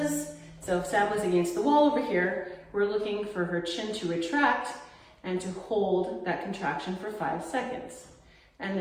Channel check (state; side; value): identical; both; correlation 1.00